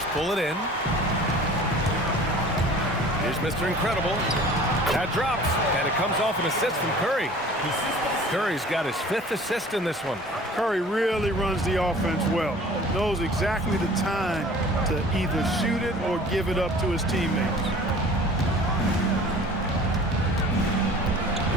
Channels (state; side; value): normal; both; correlation 0.46